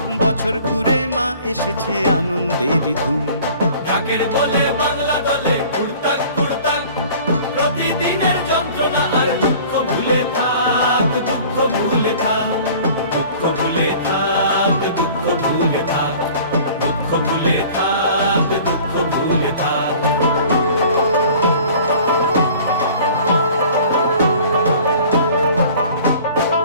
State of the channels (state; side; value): inverted; both; correlation -0.48